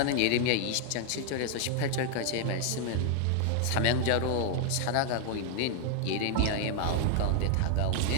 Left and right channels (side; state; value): both; different; correlation 0.00